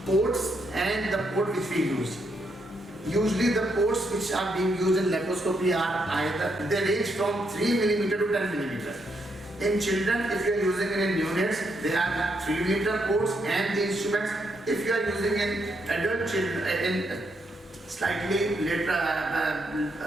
ports and the port which we use. Usually the ports which are being used in laparoscopy are either, they range from 3 mm to 10 mm. In children, if you are using it in neonates, they are 3 mm ports and the instruments. If you are using in adult children, in slightly later,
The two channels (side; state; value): both; normal; correlation 0.78